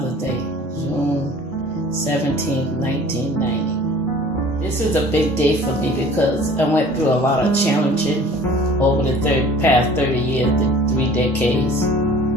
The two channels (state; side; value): normal; both; correlation 0.47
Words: Day, June 17, 1990. This is a big day for me because I went through a lot of challenging over the past 30 years, the 3 decades.